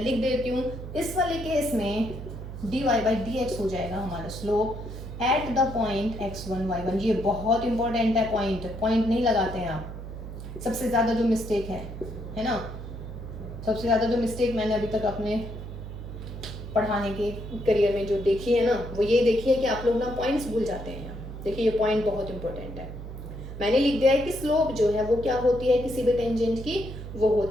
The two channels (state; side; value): noise; right; hum, 10 dB below the sound